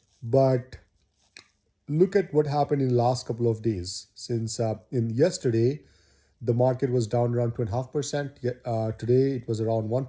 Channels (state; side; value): identical; both; correlation 1.00